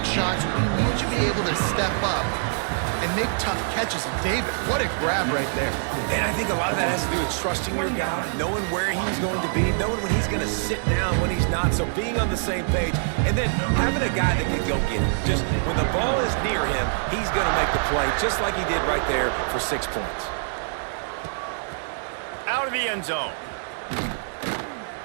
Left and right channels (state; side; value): silent; left; digital silence